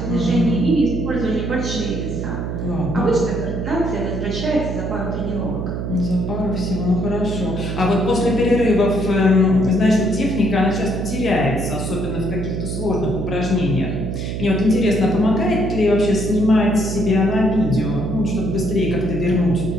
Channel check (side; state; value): right; noise; hum, 4 dB below the sound